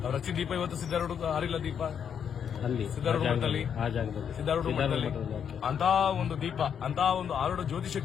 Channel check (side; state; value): right; quieter; 7.9 dB